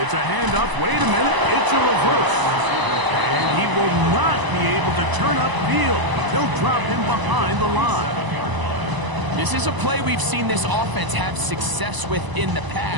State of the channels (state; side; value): late; left; 1.0 ms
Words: it's a handoff. Wait a minute, it's a reverse. And he will not be able to turn upfield. They'll drop him behind the line. This is a play we've seen this offense have success with in the